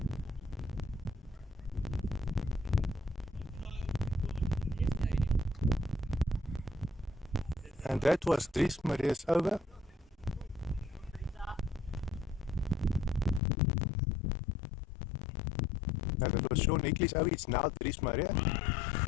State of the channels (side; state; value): right; drops out; at 13.4 s